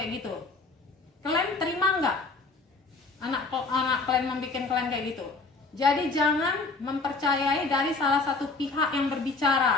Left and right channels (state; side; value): quieter; right; 3.7 dB